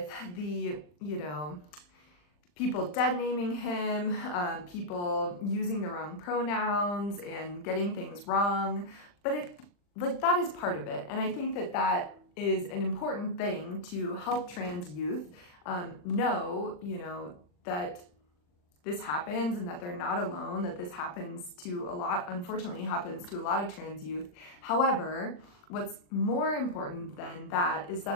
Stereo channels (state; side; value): late; right; 40 ms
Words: the, you know, people dead naming him, people using the wrong pronouns and getting things wrong. But that is part of it. And I think that that is an important thing to help trans youth know, you know, that this happens and that they're not alone, that this happens to unfortunately happens to a lot of trans youth. However, what's more important than that is